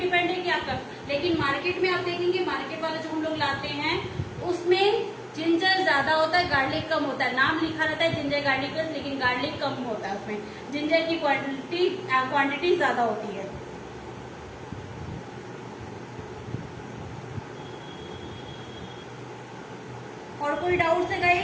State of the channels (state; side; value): identical; both; correlation 1.00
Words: है कि आपका। लेकिन मार्केट में आप देखेंगे, मार्केट वाले जो हम लोग लाते हैं उसमें जिंजर ज्यादा होता है, गार्लिक कम होता है। नाम लिखा रहता है जिंजर गार्लिक पेस्ट, लेकिन गार्लिक कम होता है उसमें। जिंजर की क्वांटिटी ज्यादा होती है। और कोई डाउट है